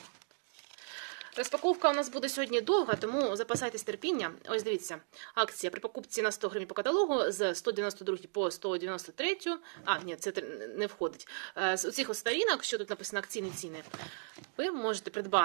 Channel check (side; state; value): left; silent; 54 dB below the other